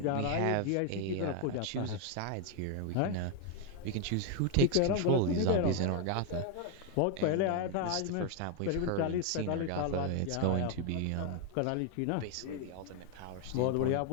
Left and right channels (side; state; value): both; different; correlation 0.01